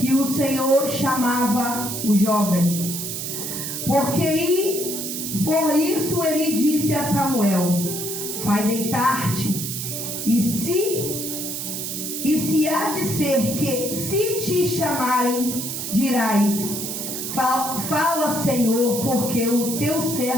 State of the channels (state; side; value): noise; right; hiss, 5 dB below the sound